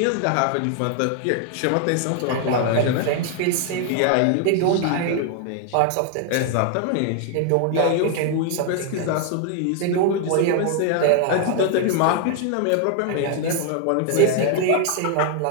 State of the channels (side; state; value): both; different; correlation 0.00